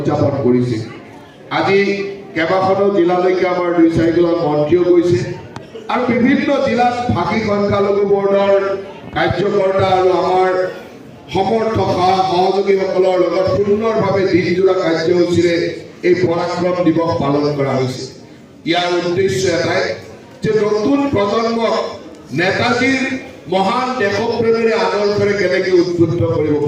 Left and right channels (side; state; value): both; identical; correlation 1.00